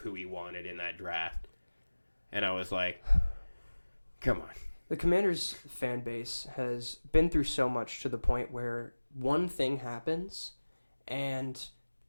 he wanted in that draft. And I was like, come on. The Commanders fan base has been through so much to the point where one thing happens and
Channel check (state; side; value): inverted; both; correlation -1.00